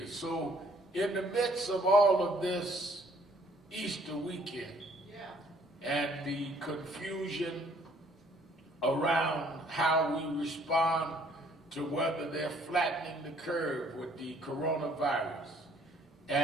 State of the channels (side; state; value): both; normal; correlation 0.61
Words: So in the midst of all of this Easter weekend and the confusion around how we respond to whether they're flattening the curve with the coronavirus,